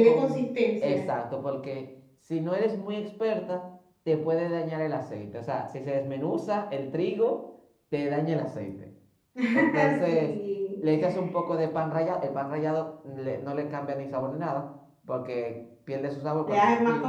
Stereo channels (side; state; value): both; identical; correlation 1.00